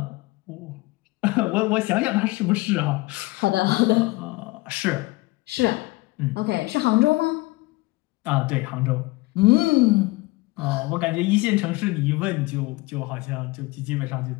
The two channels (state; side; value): quieter; right; 21.9 dB